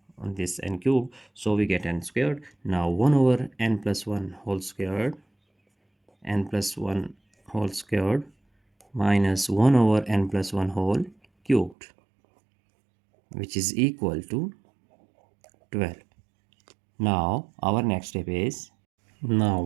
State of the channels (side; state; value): left; drops out; at 11.8 s